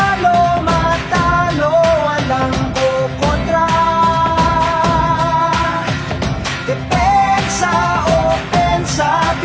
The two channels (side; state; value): both; identical; correlation 1.00